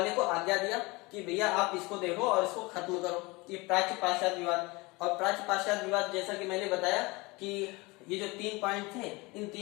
को आज्ञा दिया कि भैया आप इसको देखो और इसको खत्म करो, ये प्राच्य पाश्चात्य विवाद। और प्राच्य पाश्चात्य विवाद जैसा कि मैंने बताया कि ये जो 3 पॉइंट थे, इन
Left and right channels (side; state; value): right; quieter; 24.3 dB